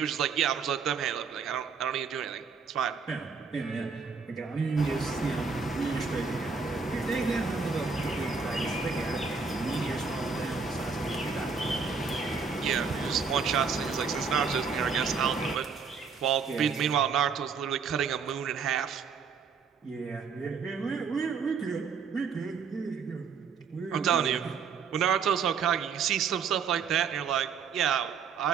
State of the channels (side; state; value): left; quieter; 5.6 dB